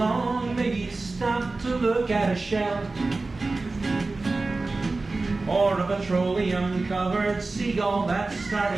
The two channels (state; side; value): quieter; left; 3.5 dB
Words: maybe stop to look at a shell, or a petroleum-covered seagull that's